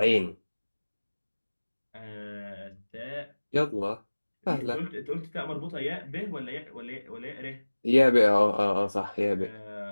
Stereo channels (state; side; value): inverted; both; correlation -1.00